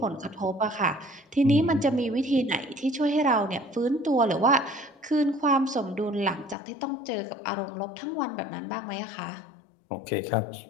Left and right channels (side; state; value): right; drops out; at 6.6 s